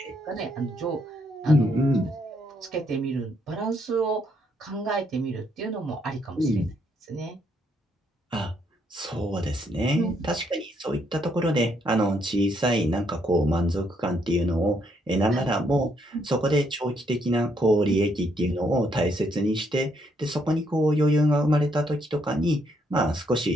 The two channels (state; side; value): normal; both; correlation 0.73